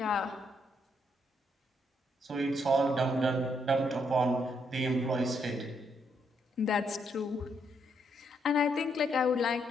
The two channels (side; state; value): both; normal; correlation 0.75